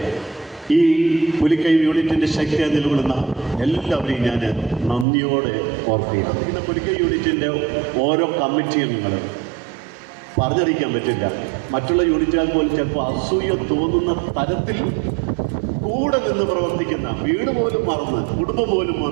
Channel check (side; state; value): left; drops out; at 5.1 s